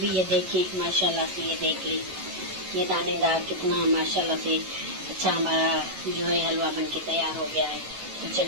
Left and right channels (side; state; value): left; late; 11 ms